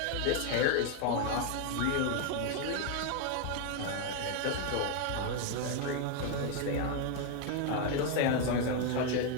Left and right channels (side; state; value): both; different; correlation 0.01